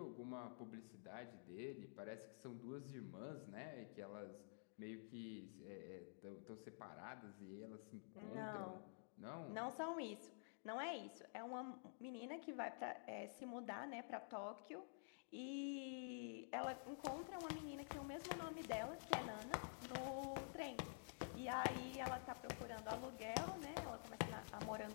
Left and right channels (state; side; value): silent; right; digital silence